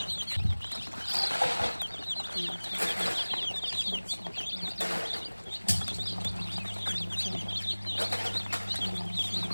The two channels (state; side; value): inverted; both; correlation -1.00